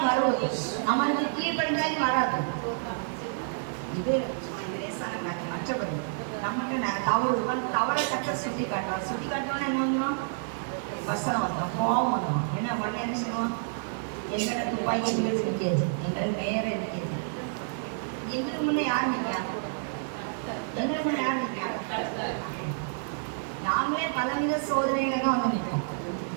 வருவது, நம்மளுக்கு கீழ்படிஞ்சாலும் வராது. இது லேசான காட்டு. மற்றபடி நம்மகிட்ட தவறை கட்ட சுட்டி காட்டுவார். சுட்டி காட்டுவோன்னா என்ன வந்துடும், வசனம் வந்துடும், கோபம் வந்துடும். ஏன்னா உடனே என்ன செய்வோம், எங்கள்கிட்ட துப்பாக்கி வீடு இருக்காது, எங்களுக்கு நேரம் இருக்காது. எங்களுக்கு முன்னே யார் நிற்கா? எங்களுக்கு முன்னே யார் நிற்கா? நாங்களே பலவித சோதனைகளை தான் நிற்போம்.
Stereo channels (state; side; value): silent; left; digital silence